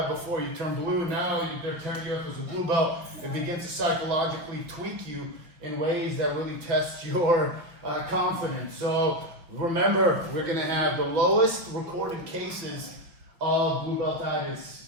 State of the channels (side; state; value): left; late; 5.6 ms